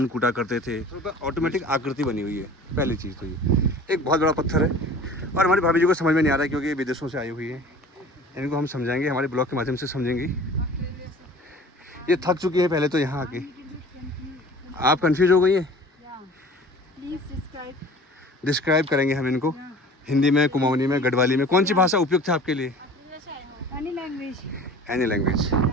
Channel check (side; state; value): both; normal; correlation 0.44